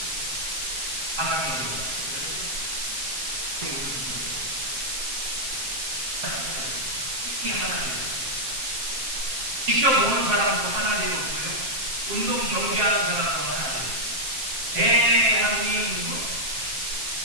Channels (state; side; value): late; left; 7.5 ms